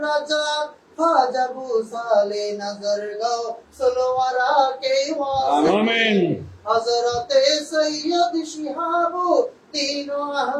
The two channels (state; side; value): identical; both; correlation 1.00